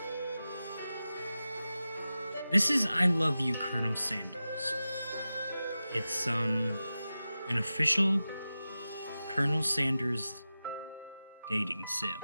This is I Love You, Colonel Sanders. It's an official Colonel Sanders dating sim.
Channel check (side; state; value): both; inverted; correlation -0.94